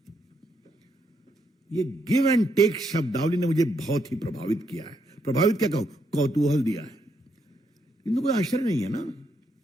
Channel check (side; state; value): both; normal; correlation 0.77